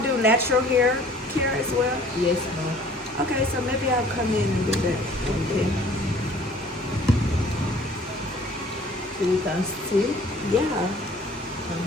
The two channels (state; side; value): normal; both; correlation 0.52